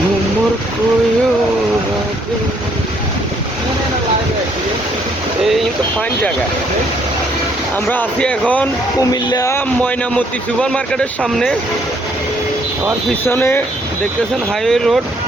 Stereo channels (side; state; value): both; normal; correlation 0.67